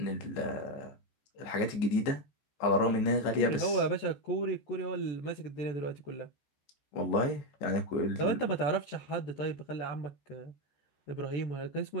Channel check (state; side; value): late; right; 14 ms